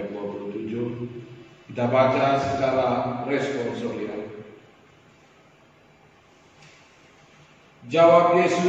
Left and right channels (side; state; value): both; identical; correlation 1.00